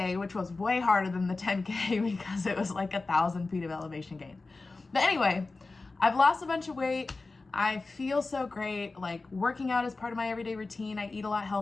which was way harder than the 10K because it was like 1,000 feet of elevation gain. But anyway, I've lost a bunch of weight. I feel so great. Like working out is part of my everyday routine. I eat a lot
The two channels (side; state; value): right; quieter; 3.6 dB